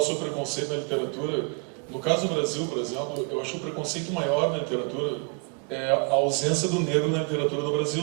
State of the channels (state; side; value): quieter; left; 34.3 dB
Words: preconceito na literatura, no caso do Brasil, por exemplo, eu acho que o preconceito maior na literatura é a ausência do negro na literatura do Brasil,